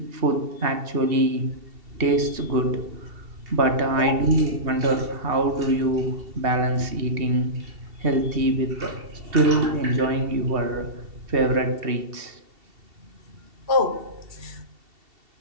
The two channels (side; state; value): left; late; 2.7 ms